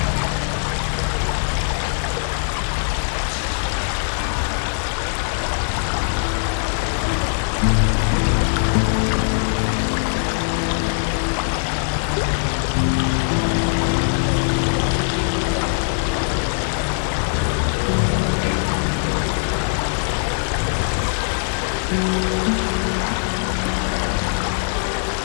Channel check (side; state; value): right; silent; digital silence